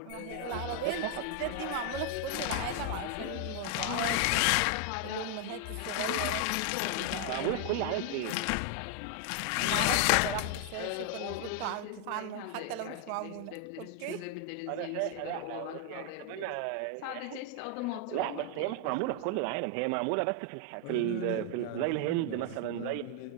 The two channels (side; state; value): both; different; correlation 0.00